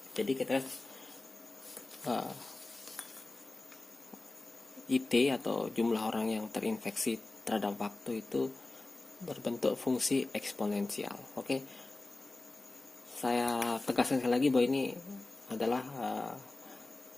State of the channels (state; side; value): quieter; right; 3.0 dB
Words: jadi kita IT atau jumlah orang yang terinfeksi terhadap waktu itu berbentuk fungsi eksponensial. Oke, saya tegaskan sekali lagi bahwa ini adalah